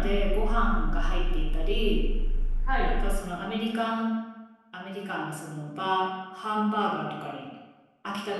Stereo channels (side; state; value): both; identical; correlation 1.00